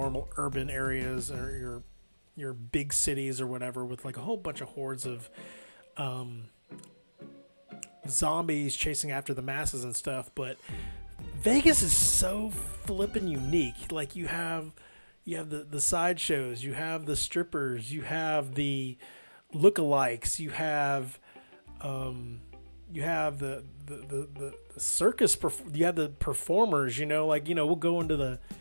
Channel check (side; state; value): both; inverted; correlation -1.00